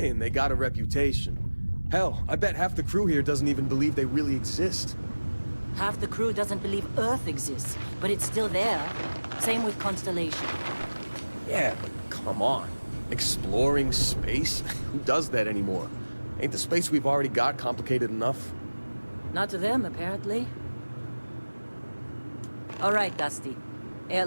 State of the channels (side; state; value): both; inverted; correlation -1.00